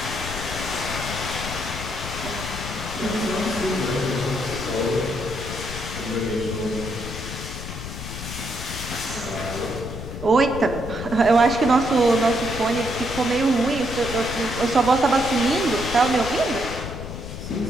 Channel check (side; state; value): left; noise; rumble, 8 dB below the sound